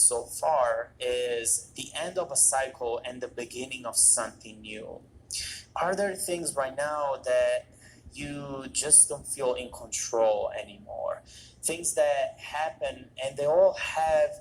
so far, is the end of a cycle and the beginning of something new. Are there things right now that you just don't feel in control anymore? Things that happen and they all have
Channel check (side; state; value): both; identical; correlation 1.00